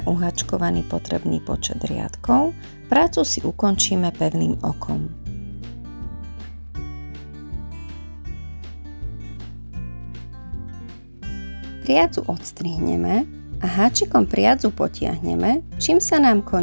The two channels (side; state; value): both; inverted; correlation -1.00